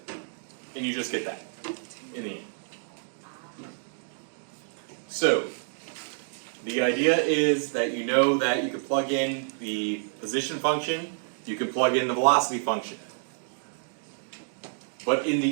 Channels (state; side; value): silent; left; digital silence